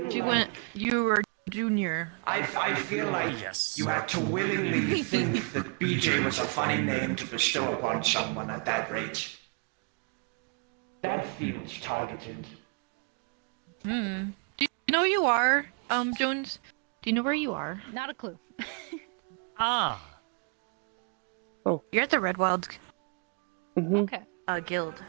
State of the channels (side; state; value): left; quieter; 36.5 dB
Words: You like... went. You were junior. I feel like Yes. you had to willingly think that BJ was a funny name to bestow upon someone at that rate. That feels targeted. Hmm. Do you know who you are, Jones? Do you know where you are? Not a clue. Ah! You're at the Red Wild Hmm. Okay. guild.